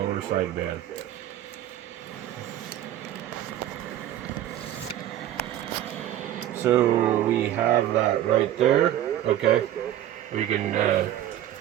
sideband. So we have that right there. Okay. We can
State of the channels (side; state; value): left; quieter; 12.2 dB